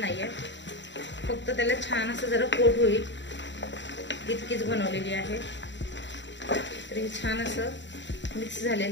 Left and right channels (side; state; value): right; late; 0.53 ms